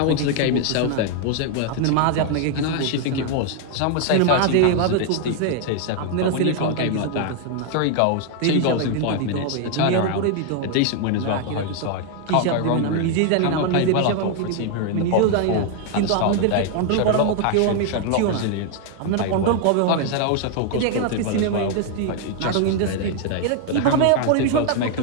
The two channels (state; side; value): different; both; correlation 0.00